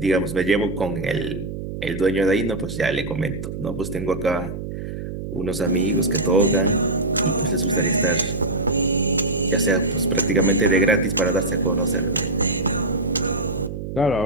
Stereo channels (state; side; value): noise; right; hum, 7 dB below the sound